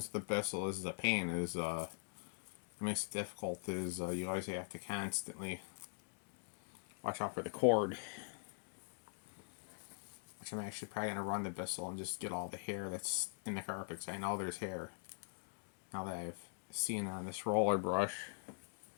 with the Bissell is the pain is it makes it difficult is you always have to constantly watch out for the cord. Which I'm actually probably gonna run the Bissell and just get all the hair that's in the carpet, because I know there's hair. Now that I've seen on this roller brush.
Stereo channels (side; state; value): right; silent; digital silence